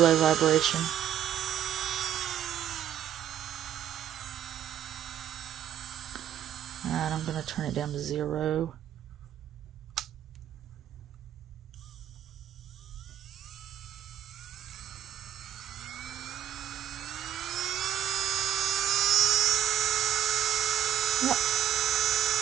vibration. Alright, I'm going to turn it down to 0. Yep.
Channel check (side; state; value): left; quieter; 10.6 dB